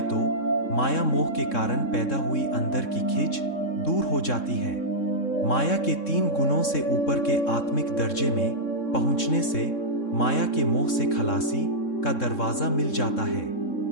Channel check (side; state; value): right; late; 3.7 ms